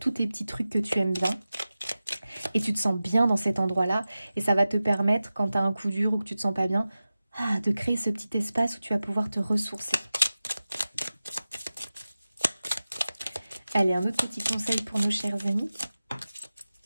tes petits trucs que tu aimes bien. Et tu te sens bien dans cet endroit-là. Et ça va te permettre, quand tu as un coup dur ou que tu te sens pas bien, de créer ce petit espace où tu vas pouvoir te ressourcer. Allez, un autre petit conseil pour nos chers amis.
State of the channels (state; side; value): inverted; both; correlation -0.95